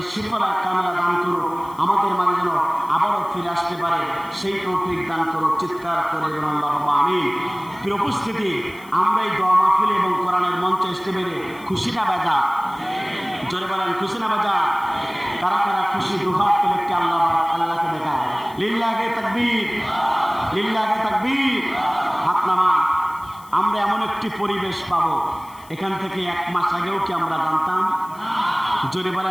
শিফা কামিলা দান করুক, আমাদের মাঝে যেন আবারও ফিরে আসতে পারে সেই তৌফিক দান করুক। চিৎকার করে বলুন আল্লাহুম্মা আমিন। প্রিয় উপস্থিতি, আমরা এই দোয়া মাহফিল এবং কোরআনের মঞ্চে আসতে পেরে খুশি না বেজা? জোরে বলেন খুশি না বেজা? কারা কারা খুশি দুহাত তুলে একটি আল্লাহকে দেখায়। লিল্লাহি তাকবীর, লিল্লাহি তাকবীর। হাত নামা। আমরা এমন একটি পরিবেশ পাবো, এখান থেকে 1 মাস আগেও কি আমরা জানতাম? জোরে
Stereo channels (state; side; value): noise; left; hiss, 24 dB below the sound